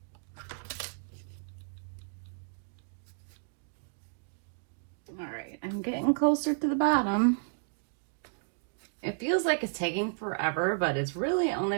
Alright, I'm getting closer to the bottom. It feels like it's taking forever, but it's really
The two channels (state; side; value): silent; left; digital silence